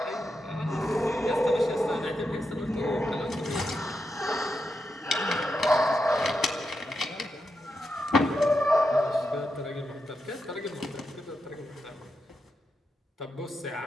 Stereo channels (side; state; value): both; normal; correlation 0.86